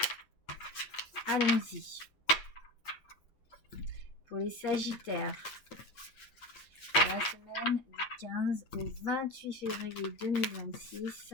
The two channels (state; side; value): late; right; 8.7 ms